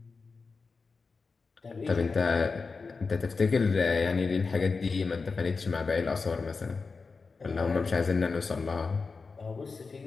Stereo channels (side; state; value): right; quieter; 4.5 dB